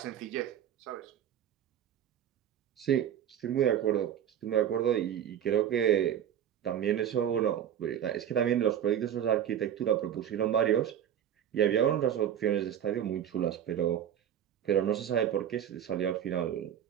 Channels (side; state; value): left; quieter; 9.8 dB